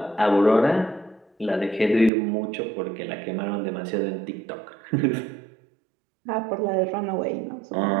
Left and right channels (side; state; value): left; drops out; at 2.1 s